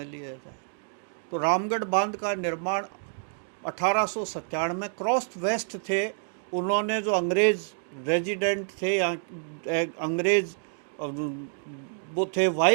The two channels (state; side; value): silent; left; 59 dB below the other